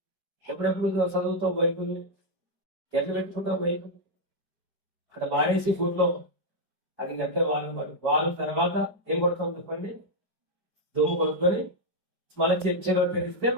ఎప్పుడెప్పుడు చదువుతావు బైబిల్ని? ఎట్లా పెట్టుకుంటావు బైబిల్? అక్కడ వాడేసి గుడ్లో అది గంటే వారం తర్వాత ఏం కొడతాం చెప్పండి? దుమ్ము కొట్టుకొని మళ్ళీ చర్చిలో తెరిస్తే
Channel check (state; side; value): late; left; 4.9 ms